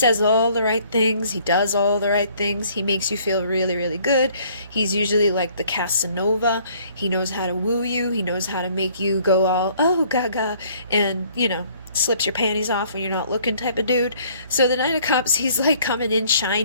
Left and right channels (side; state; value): both; inverted; correlation -0.60